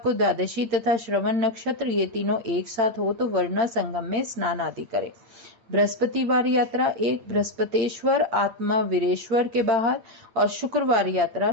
द्वादशी तथा श्रवण नक्षत्र ये तीनों एक साथ हो तो वरुणा संगम में स्नान आदि करें। बृहस्पतिवार यात्रा एक बृहस्पतेश्वर आत्मा वीरेश्वर के बाहर और शुक्रवार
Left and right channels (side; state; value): left; late; 8.6 ms